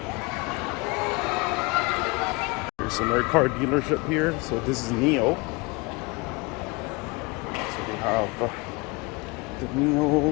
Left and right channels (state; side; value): quieter; right; 26.4 dB